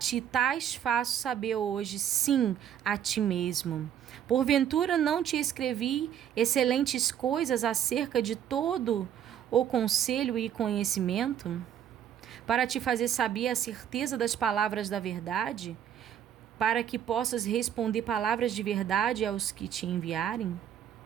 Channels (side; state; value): left; quieter; 9.7 dB